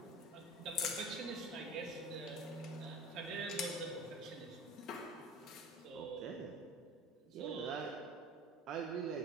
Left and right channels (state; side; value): normal; both; correlation 0.38